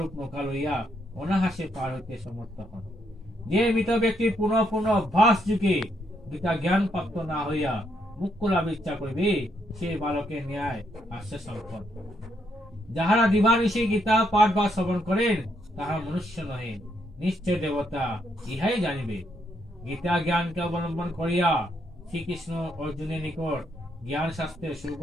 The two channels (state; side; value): normal; both; correlation 0.75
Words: নৌকা লইয়া অনাহাসে পার হইতে সমর্থ হন। যে মৃত ব্যক্তি পুনঃ পুনঃ অভ্যাস যুগে গীতা জ্ঞান প্রাপ্ত না হইয়া মুক্ত লাভ ইচ্ছা করিবে, সে বালকের ন্যায় আসছে সম্পদ। যাহারা দিবানিশি গীতা পাঠ বা শ্রবণ করেন তাহা মনুষ্য নহে, নিশ্চয় দেবতা, ইহাই জানিবে। গীতা জ্ঞানকে অবলম্বন করিয়া শ্রীকৃষ্ণ অর্জুনের নিকট জ্ঞান শাস্ত্রের